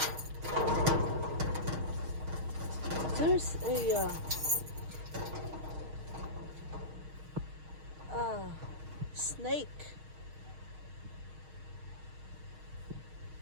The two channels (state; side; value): late; left; 6.4 ms